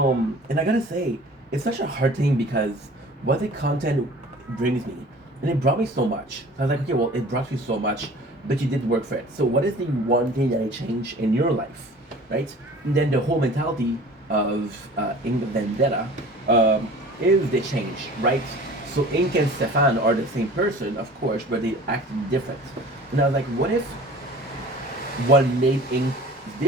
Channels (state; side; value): normal; both; correlation 0.44